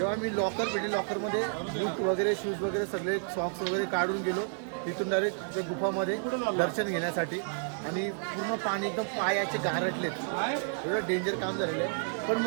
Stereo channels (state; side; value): silent; left; digital silence